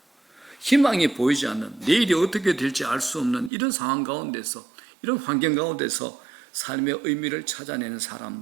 희망이 보이지 않는, 내일이 어떻게 될지 알 수 없는 이런 상황 가운데서, 이런 환경 가운데서 삶의 의미를 찾아내는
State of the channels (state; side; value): drops out; left; at 3.5 s